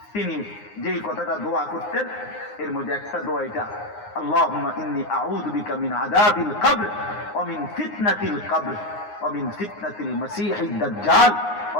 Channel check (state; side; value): late; right; 9.6 ms